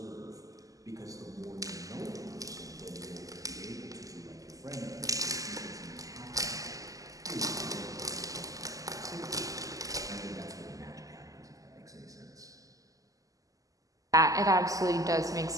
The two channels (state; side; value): late; left; 0.17 ms